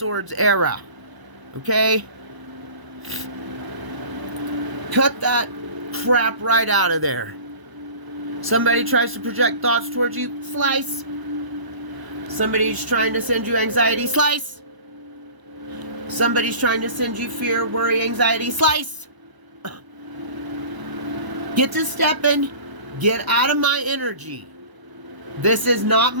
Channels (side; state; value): left; late; 1.0 ms